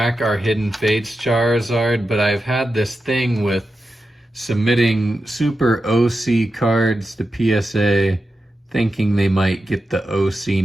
our Hidden Fates Charizard. But I've had this thing with submitting super OC cards to PSA thinking they might get the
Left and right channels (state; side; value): normal; both; correlation 0.90